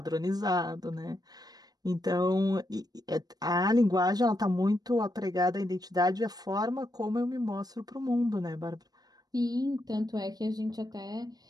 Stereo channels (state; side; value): late; left; 0.19 ms